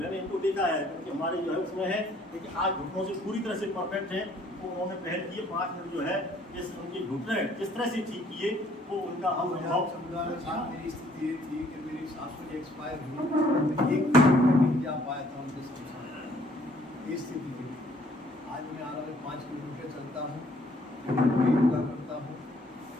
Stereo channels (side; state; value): both; normal; correlation 0.61